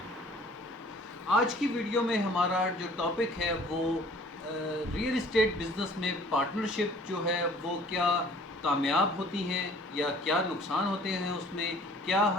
آج کی ویڈیو میں ہمارا جو ٹاپک ہے وہ ریئل اسٹیٹ بزنس میں پارٹنرشپ جو ہے وہ کیا کامیاب ہوتی ہیں یا کیا نقصان ہوتے ہیں اس میں، کیا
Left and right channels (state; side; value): normal; both; correlation 0.53